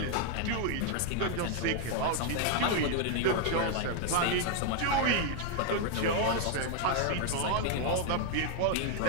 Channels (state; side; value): different; both; correlation 0.00